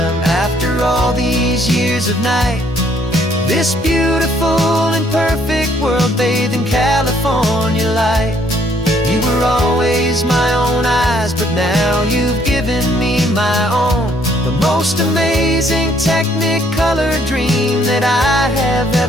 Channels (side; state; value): both; normal; correlation 0.66